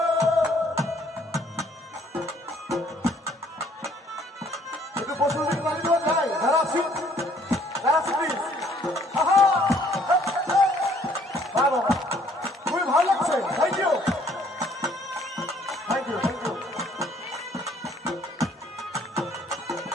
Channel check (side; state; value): both; normal; correlation 0.62